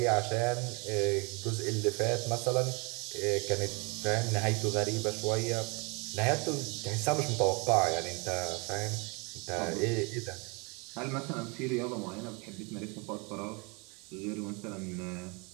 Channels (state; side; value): quieter; left; 30.6 dB